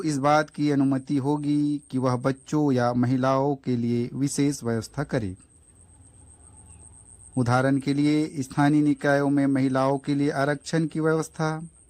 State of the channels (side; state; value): both; identical; correlation 1.00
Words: इस बात की अनुमति होगी कि वह बच्चों या महिलाओं के लिए विशेष व्यवस्था करे। उदाहरण के लिए स्थानीय निकायों में महिलाओं के लिए आरक्षण की व्यवस्था